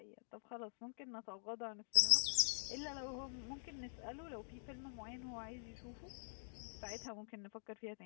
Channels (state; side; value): silent; right; digital silence